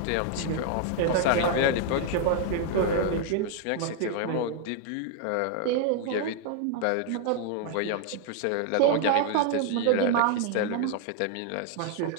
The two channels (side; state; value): both; different; correlation 0.00